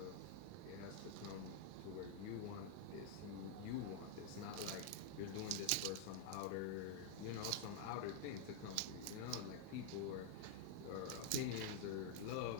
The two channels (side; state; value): both; different; correlation -0.01